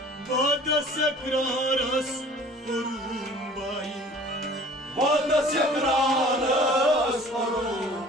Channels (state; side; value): normal; both; correlation 0.48